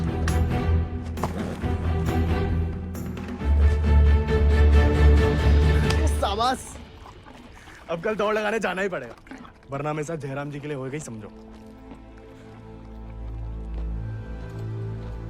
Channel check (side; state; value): both; identical; correlation 1.00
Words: शाबाश, अब कल दौड़ लगाने जाना ही पड़ेगा, वरना मेरे साथ जयराम जी के लिए होएगा ही समझो।